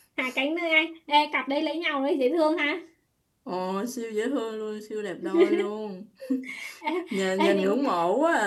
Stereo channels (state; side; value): identical; both; correlation 1.00